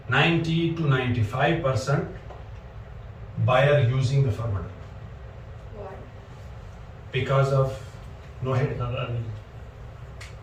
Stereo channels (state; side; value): identical; both; correlation 1.00